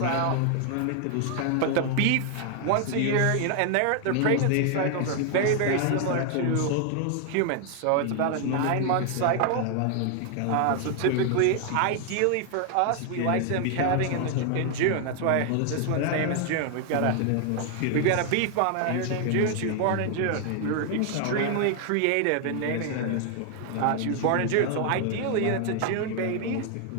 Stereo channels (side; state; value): both; different; correlation 0.00